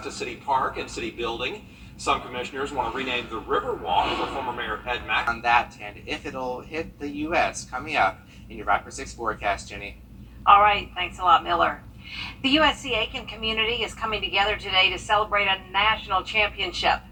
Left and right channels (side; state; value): both; identical; correlation 1.00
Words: City Park and City Building. Some commissioners want to rename the Riverwalk for former Mayor Ed Mack. On that, and if it'll hit the U.S. coming up in your Viper 6 forecast, Jenny. All right, thanks a lot, Miller. The USC Aiken community is coming together today to celebrate a national championship.